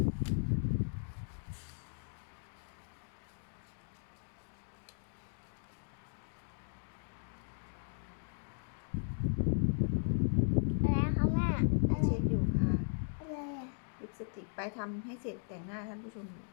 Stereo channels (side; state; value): right; silent; digital silence